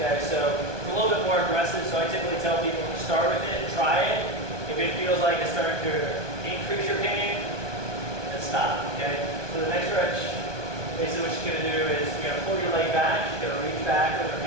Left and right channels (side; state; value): left; late; 1.2 ms